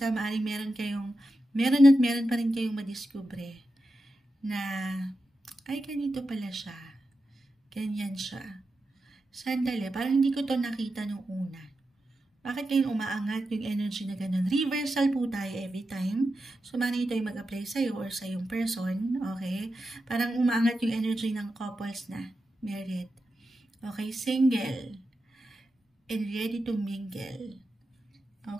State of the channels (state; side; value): normal; both; correlation 0.90